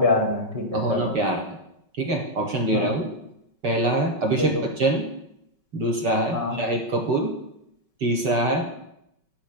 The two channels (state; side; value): late; left; 5.3 ms